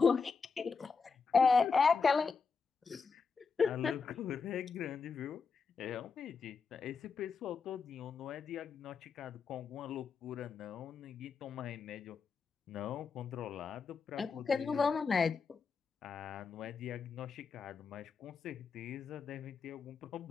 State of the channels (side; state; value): right; quieter; 5.2 dB